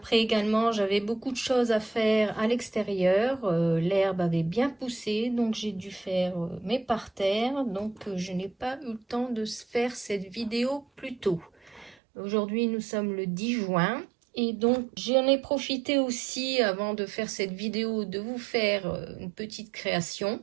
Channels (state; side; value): drops out; left; at 12.0 s